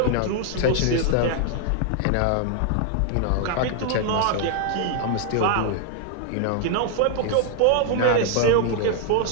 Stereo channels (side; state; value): both; different; correlation 0.00